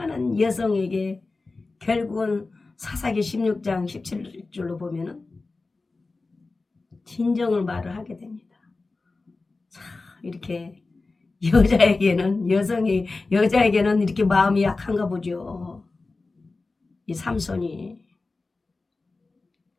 여성에게 결국은 사사기 16장 17절로 보면은 진정을 말을 하게 됩니다. 자, 이렇게 여자에게는 이렇게 마음이 약한가 보죠. 이 삼손이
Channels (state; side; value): quieter; right; 3.6 dB